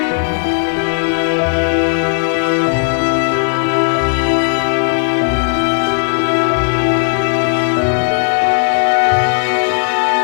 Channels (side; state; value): right; silent; digital silence